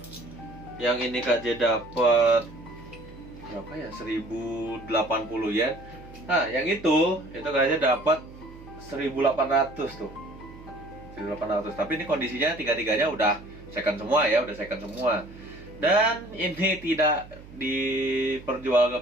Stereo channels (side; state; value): right; noise; hum, 18 dB below the sound